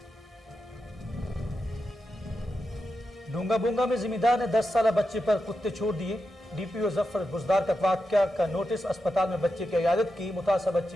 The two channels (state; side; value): normal; both; correlation 0.88